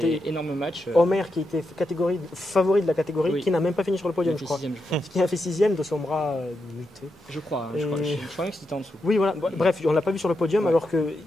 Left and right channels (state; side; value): normal; both; correlation 0.85